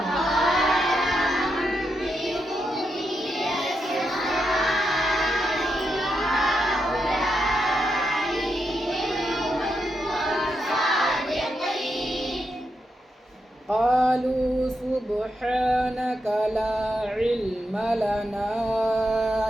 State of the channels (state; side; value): normal; both; correlation 0.84